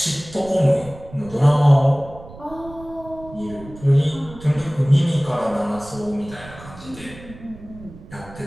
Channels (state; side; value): noise; right; rumble, 18 dB below the sound